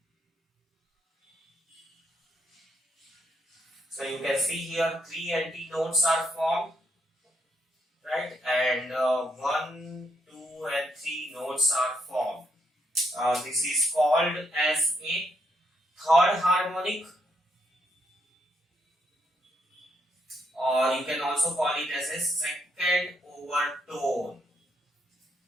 So you can see here 3 antinodes are formed, right? And 1, 2, and 3 nodes are formed. This is called as a third harmonic, or you can also call it as a second overtone.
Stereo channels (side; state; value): both; normal; correlation 0.76